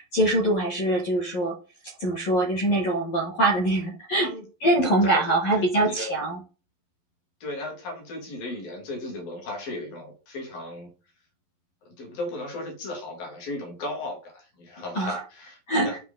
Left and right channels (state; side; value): late; right; 11 ms